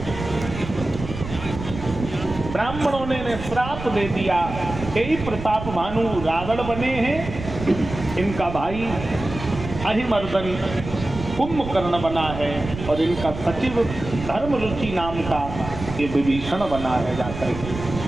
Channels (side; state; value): right; noise; rumble, 9 dB below the sound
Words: ब्राह्मणों ने श्राप दे दिया, यही प्रताप भानु रावण बने हैं, इनका भाई अहिमर्दन कुंभकर्ण बना है और इनका सचिव धर्मरुचि नाम का ये विभीषण बना है जाकर के।